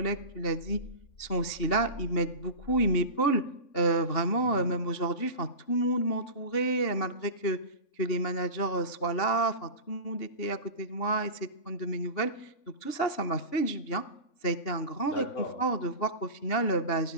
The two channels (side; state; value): right; late; 3.5 ms